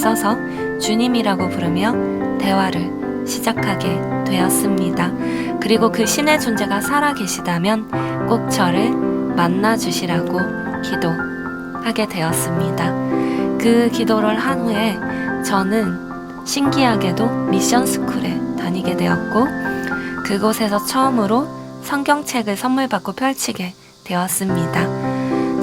주님이라고 부르며 대화를 시작하게 되었습니다. 그리고 그 신의 존재가 살아계시다면 꼭 저를 만나주시라고 기도하게 되었습니다. 그 기도를 한 후에 저는 신기하게도 미션 스쿨에 다니게 되었고 그곳에서 처음으로 성경책을 선물 받고 펼치게 되었습니다.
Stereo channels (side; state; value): both; identical; correlation 1.00